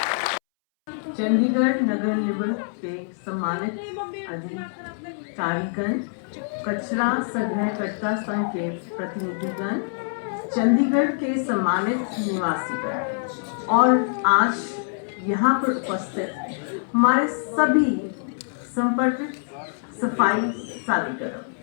चंडीगढ़ नगर निगम के सम्मानित अधिकारीगण, कचरा संग्रहकर्ता संघ के प्रतिनिधिगण, चंडीगढ़ के सम्मानित निवासीगण और आज यहाँ पर उपस्थित हमारे सभी संपर्कित सफाई साथीगण,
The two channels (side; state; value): right; silent; 62 dB below the other